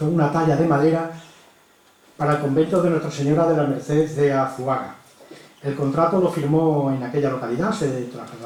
una talla de madera, para el convento de Nuestra Señora de la Merced de Azuaga. El contrato lo firmó en aquella localidad, se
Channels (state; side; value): identical; both; correlation 1.00